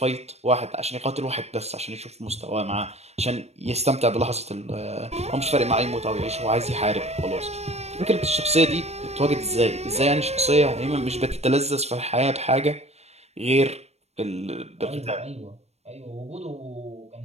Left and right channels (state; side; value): late; left; 0.31 ms